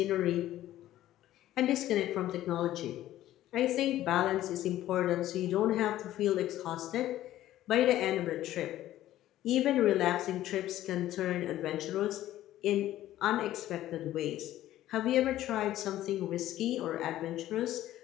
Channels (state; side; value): quieter; right; 13.8 dB